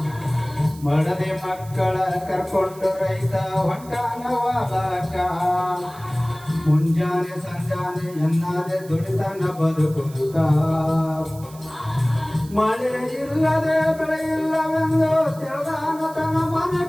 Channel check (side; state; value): right; noise; hiss, 21 dB below the sound